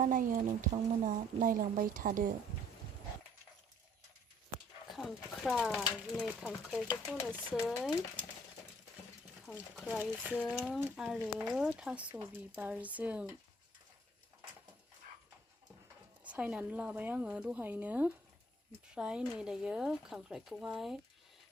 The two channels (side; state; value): both; normal; correlation 0.60